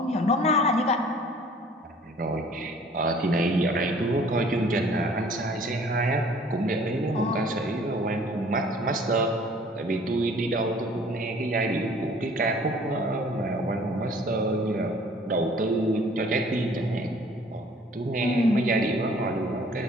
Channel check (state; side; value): normal; both; correlation 0.53